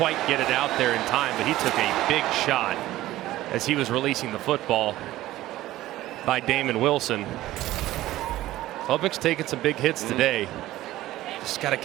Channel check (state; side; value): quieter; left; 15.7 dB